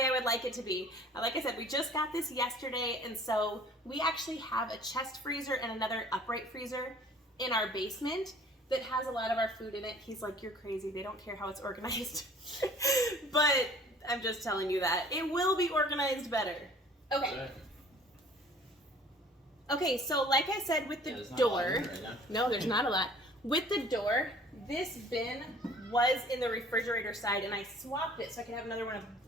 I would like it to be. Like I said, we just got this yesterday, and so we actually have a chest freezer and another upright freezer in our basement that has a lot of our food in it. He's like, you're crazy. They don't care how it's organized. But I'm just telling you that. It will be organized better. Okay. Okay, so like I said with the door, no, there's not a lot. With the door, this bin was in the refrigerator side and I swapped it so I could have another one of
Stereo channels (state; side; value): normal; both; correlation 0.51